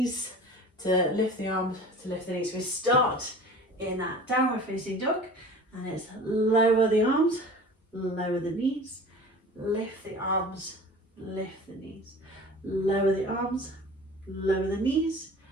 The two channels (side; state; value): both; normal; correlation 0.41